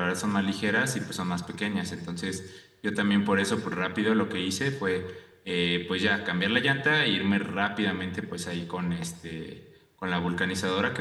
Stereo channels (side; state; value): both; identical; correlation 1.00